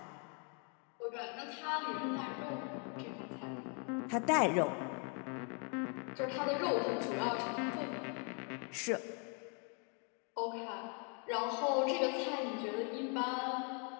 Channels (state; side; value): quieter; right; 38.2 dB